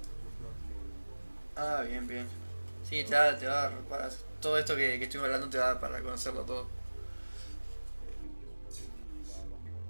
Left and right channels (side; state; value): both; inverted; correlation -1.00